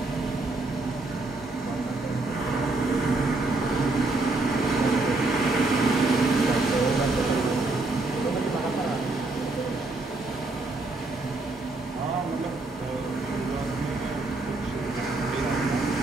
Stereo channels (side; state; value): left; quieter; 3.2 dB